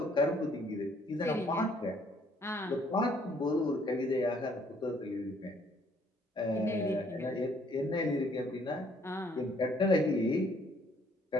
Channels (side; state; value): both; normal; correlation 0.64